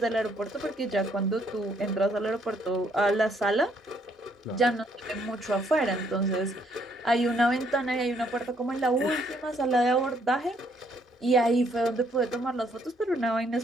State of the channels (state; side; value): normal; both; correlation 0.69